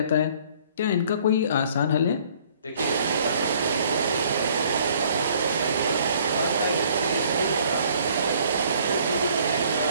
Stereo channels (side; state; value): both; inverted; correlation -0.59